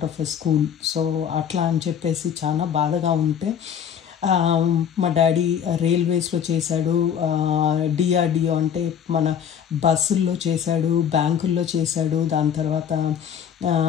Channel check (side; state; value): right; quieter; 8.4 dB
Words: of a school. So అట్లా అని చెప్పేసి చాలా బాధగా ఉంటే మా డాడీ రైల్వేస్లో చేశాడు, డిఆర్డిఓ అంటే మన బస్సుల్లో చేశాడు, బ్యాంకుల్లో చేశాడు, దాని తర్వాత